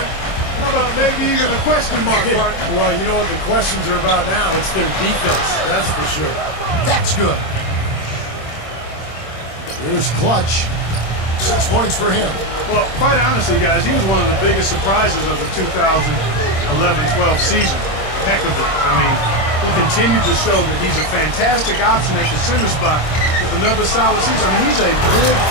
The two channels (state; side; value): late; right; 25 ms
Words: How about maybe even a question mark, Mark? Well, you know what the questions are about now? It's their defense, that's for sure. That's good. Here's Clutch. 6 points for him. Well, quite honestly, guys, he was one of the biggest surprises of the 2011-12 season. Heck of it. I mean, he continued to show that he's a fantastic option at the center spot with another solid season. I mean, he's a good